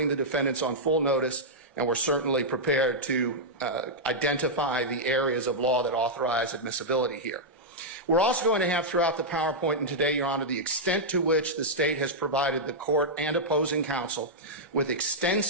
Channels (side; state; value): both; normal; correlation -0.07